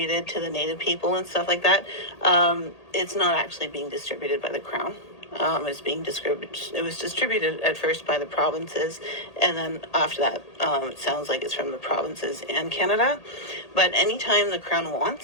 to the Native people and stuff like that, it's not actually being distributed by the Crown. It's being distributed. It was distributed at first by the provinces, and then after that, it sounds like it's from the provinces and Canada. But anytime the Crown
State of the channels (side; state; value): right; late; 1.8 ms